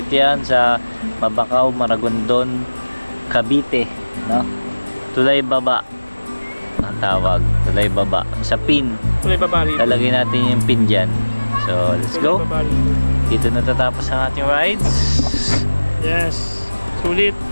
yan sa Mabakaw, Maragondon, Cavite, no? Tulay Baba ang tawag, Tulay Baba. Sa pin, Tulay Baba rito. lalagay natin yung pin dyan. So, let's go. Dito natatapos ang ating rides. Yes. Sulit.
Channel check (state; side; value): inverted; both; correlation -1.00